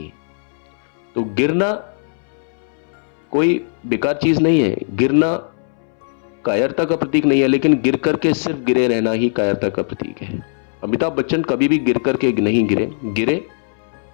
तो गिरना कोई बेकार चीज नहीं है। गिरना कायरता का प्रतीक नहीं है, लेकिन गिर करके सिर्फ गिरे रहना ही कायरता का प्रतीक है। अमिताभ बच्चन कभी भी गिर करके नहीं गिरे। गिरे,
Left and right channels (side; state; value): right; silent; 64 dB below the other